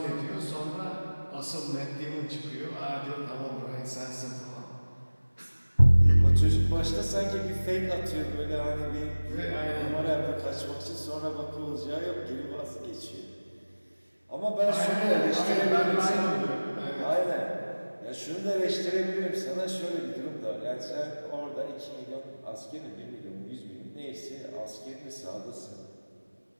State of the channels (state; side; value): inverted; both; correlation -1.00